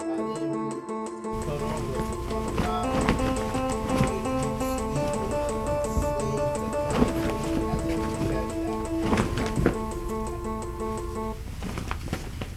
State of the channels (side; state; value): both; identical; correlation 1.00